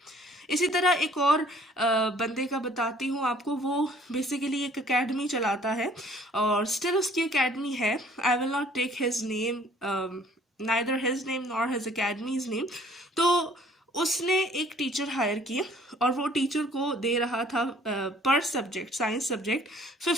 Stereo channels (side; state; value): both; normal; correlation 0.57